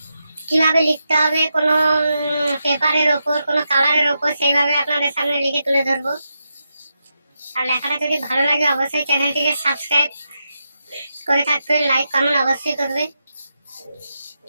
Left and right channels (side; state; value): both; inverted; correlation -0.86